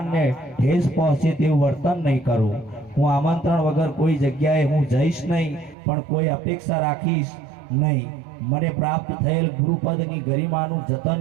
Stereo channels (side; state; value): left; drops out; at 5.8 s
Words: ઠેસ પહોંચે તેવું વર્તન નહીં કરું. હું આમંત્રણ વગર કોઈ જગ્યાએ હું જઈશ નહીં, પણ કોઈ અપેક્ષા રાખીશ નહીં. મને પ્રાપ્ત થયેલ ગુરુપદની ગરિમાનું જતન